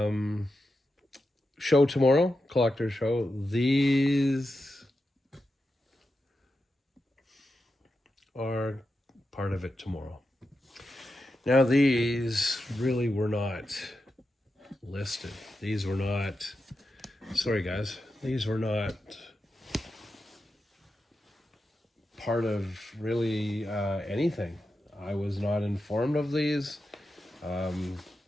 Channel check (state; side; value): normal; both; correlation 0.89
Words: Show tomorrow, collector show. These are part of it tomorrow. Now, these really were not listed. These were not... Sorry, guys. These were not part of really anything. I was not informed of these.